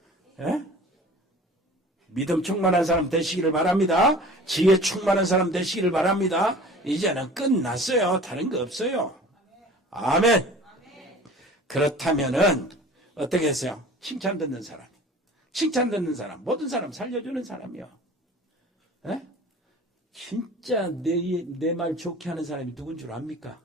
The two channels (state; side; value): normal; both; correlation 0.43